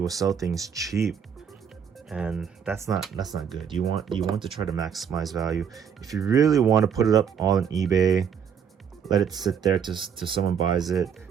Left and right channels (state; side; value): quieter; left; 7.6 dB